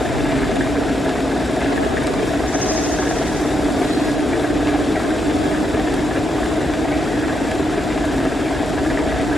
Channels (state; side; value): normal; both; correlation 0.81